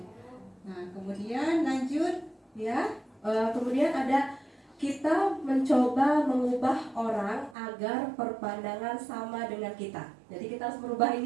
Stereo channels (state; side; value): drops out; left; at 7.6 s